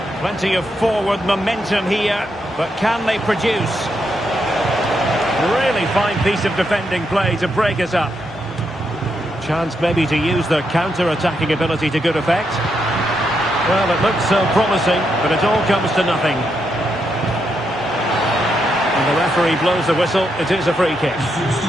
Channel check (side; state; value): both; normal; correlation 0.81